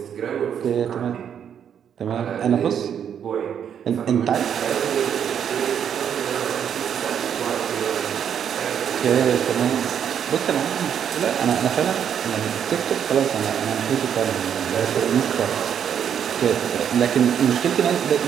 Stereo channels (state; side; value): quieter; left; 8.5 dB